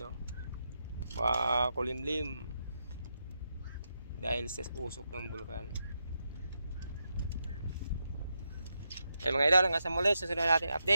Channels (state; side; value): inverted; both; correlation -0.85